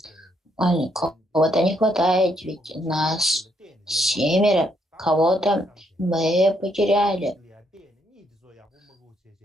Кого-то не хватает, ведь нас 7, кого-то мы потеряли.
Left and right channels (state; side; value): normal; both; correlation 0.74